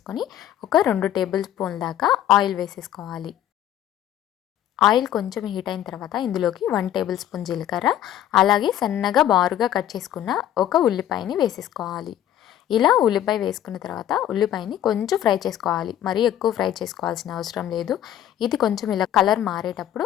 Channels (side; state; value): right; quieter; 11.6 dB